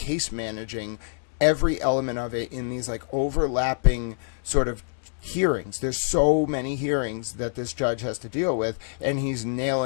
managing every element of it in these like overlapping sort of hearings. There's so many hearings that this judge has to deal with, and he's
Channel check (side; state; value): right; silent; 61 dB below the other